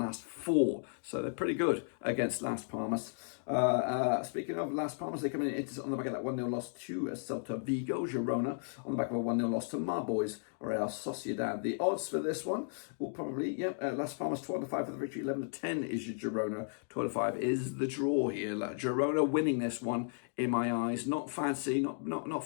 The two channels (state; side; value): silent; right; digital silence